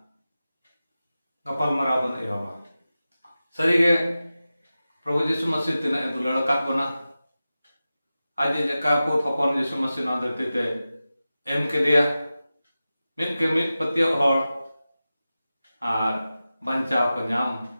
गपाल माराव बन एहबा सरीगे प्रभु यीशु मसीह तिना दुलाड़ काट बना आज जका को थपन यीशु मसीह ना धरती ते एम केदिया मित के मित पतियो हर आर बंचाव को नाम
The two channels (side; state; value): both; inverted; correlation -0.94